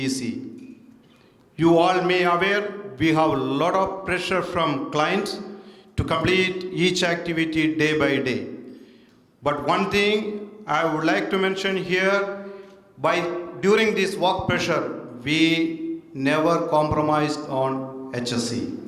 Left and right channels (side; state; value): both; identical; correlation 1.00